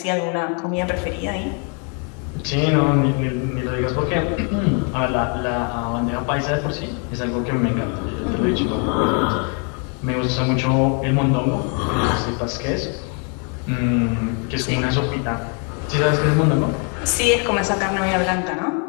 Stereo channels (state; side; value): quieter; right; 39.0 dB